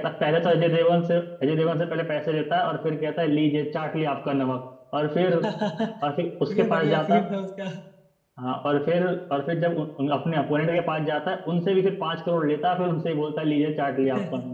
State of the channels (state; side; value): identical; both; correlation 1.00